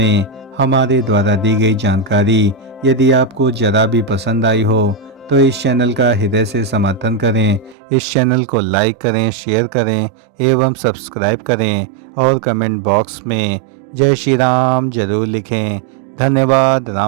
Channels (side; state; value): left; drops out; at 7.8 s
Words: हमारे द्वारा दी गई जानकारी यदि आपको जरा भी पसंद आई हो तो इस चैनल का हृदय से समर्थन करें। इस चैनल को लाइक करें, शेयर करें एवं सब्सक्राइब करें और कमेंट बॉक्स में जय श्री राम जरूर लिखें। धन्यवाद।